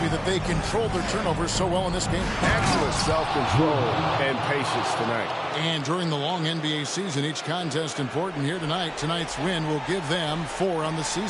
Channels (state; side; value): identical; both; correlation 1.00